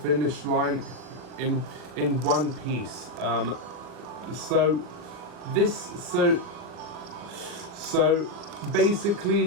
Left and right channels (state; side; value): late; left; 40 ms